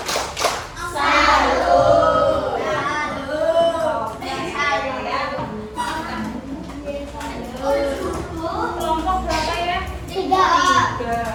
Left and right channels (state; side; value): identical; both; correlation 1.00